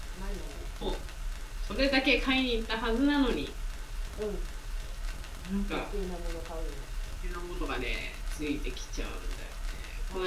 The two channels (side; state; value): both; identical; correlation 1.00